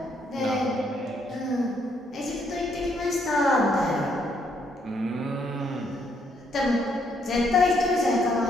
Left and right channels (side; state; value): both; normal; correlation 0.72